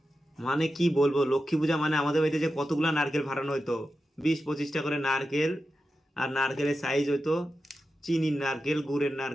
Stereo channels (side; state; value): both; normal; correlation 0.91